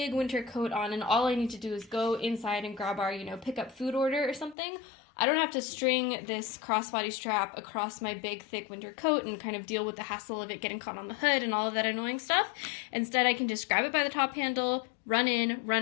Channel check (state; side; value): drops out; right; at 4.5 s